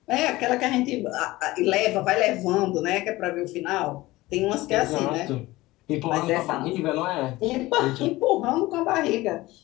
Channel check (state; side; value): quieter; right; 18.9 dB